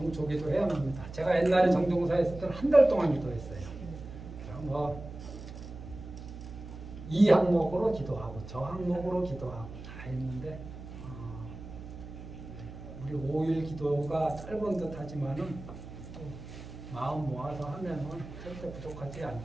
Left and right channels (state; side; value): noise; right; hum, 12 dB below the sound